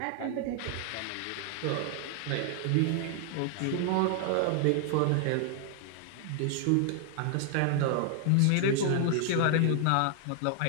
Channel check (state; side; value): different; both; correlation 0.00